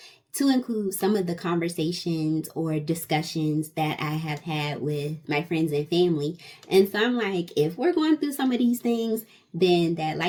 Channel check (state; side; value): identical; both; correlation 1.00